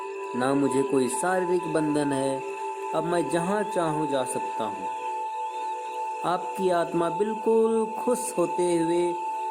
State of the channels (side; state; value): both; identical; correlation 1.00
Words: ना मुझे कोई शारीरिक बंधन है। अब मैं जहाँ चाहूँ जा सकता हूँ। आपकी आत्मा बिल्कुल खुश होते हुए